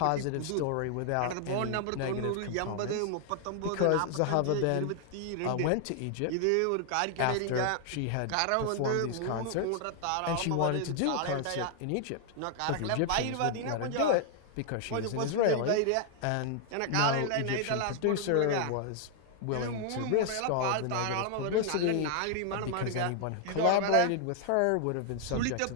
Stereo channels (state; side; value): different; both; correlation 0.00